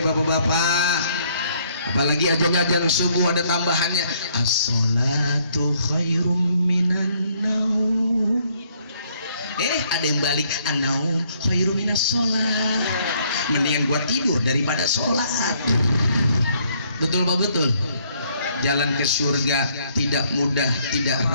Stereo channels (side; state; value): both; inverted; correlation -0.67